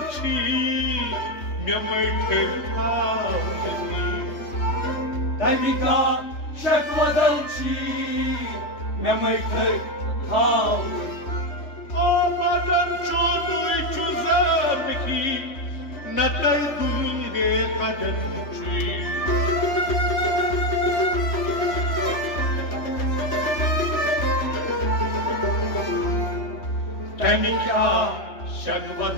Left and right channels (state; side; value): late; right; 3.2 ms